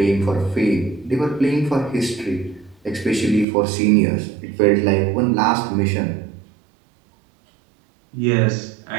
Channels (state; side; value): drops out; left; at 3.5 s